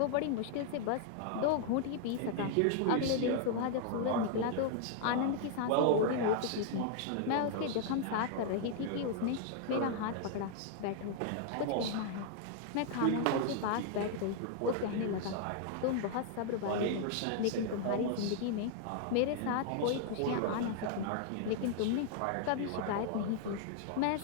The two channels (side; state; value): both; different; correlation 0.00